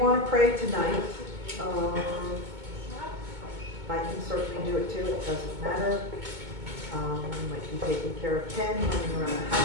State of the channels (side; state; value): left; late; 2.2 ms